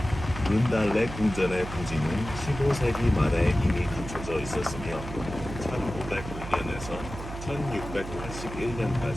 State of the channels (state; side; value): noise; right; hum, 10 dB below the sound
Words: 룬달레 궁전의 부지는 15세기 말에 이미 갖춰져 있었으며 1509년에서